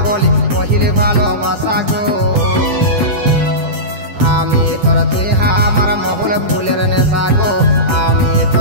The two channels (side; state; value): left; late; 10 ms